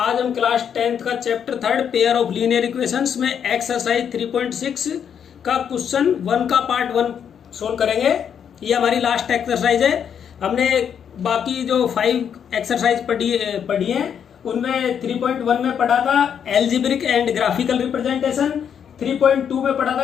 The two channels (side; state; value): right; quieter; 8.1 dB